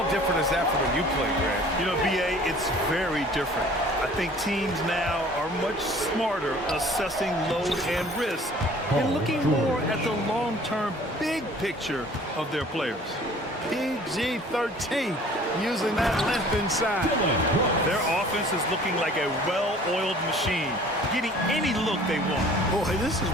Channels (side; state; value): both; normal; correlation 0.50